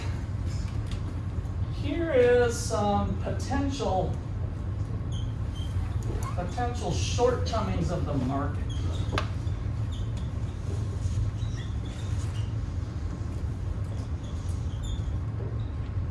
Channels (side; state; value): both; identical; correlation 1.00